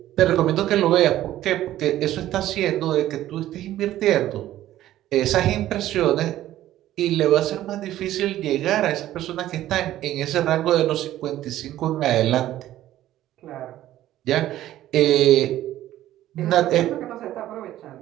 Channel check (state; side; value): quieter; left; 13.6 dB